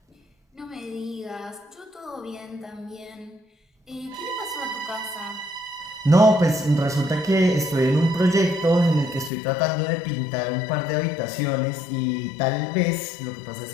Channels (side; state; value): right; drops out; at 9.3 s